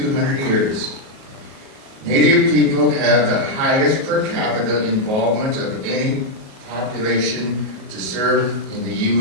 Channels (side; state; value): left; late; 38 ms